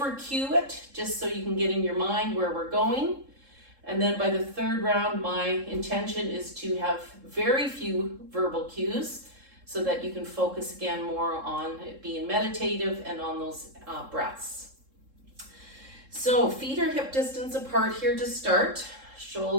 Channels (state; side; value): late; left; 3.7 ms